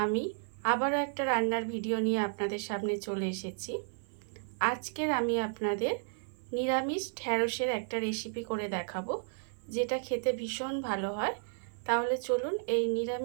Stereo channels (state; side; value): silent; left; 56 dB below the other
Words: আমি আবারও একটা রান্নার ভিডিও নিয়ে আপনাদের সামনে চলে এসেছি। আজকের আমি আপনাদের নিরামিষ ঢ্যাঁড়সের একটা রেসিপি করে দেখাবো, যেটা খেতে ভীষণ ভালো হয়। তাহলে চলুন এই